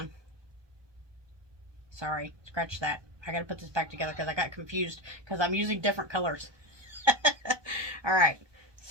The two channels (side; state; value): left; late; 1.2 ms